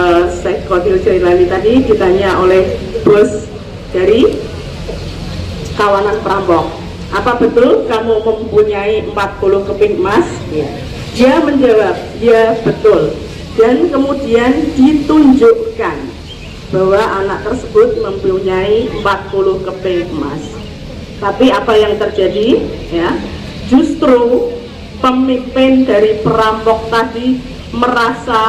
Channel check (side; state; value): both; identical; correlation 1.00